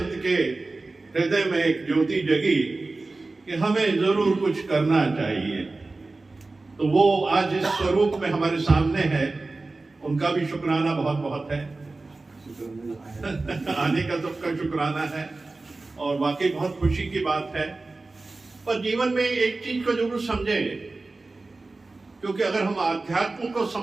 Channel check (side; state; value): left; quieter; 3.4 dB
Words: के हृदय में एक ज्योति जगी कि हमें जरूर कुछ करना चाहिए, तो वो आज इस स्वरूप में हमारे सामने है। उनका भी शुक्राना बहुत बहुत है। आने का सबका शुक्राना है और वाकई बहुत खुशी की बात है। पर जीवन में एक चीज को जरूर समझें, क्योंकि अगर हम आध्यात्म को